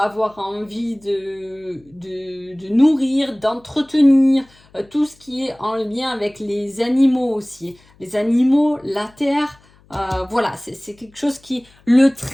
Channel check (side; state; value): left; noise; hum, 30 dB below the sound